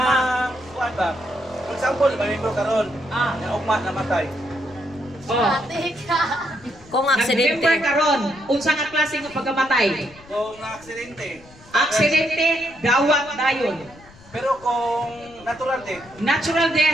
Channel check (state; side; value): noise; left; rumble, 23 dB below the sound